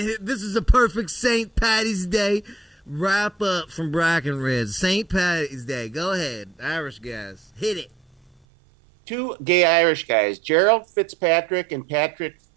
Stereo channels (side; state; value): left; drops out; at 8.3 s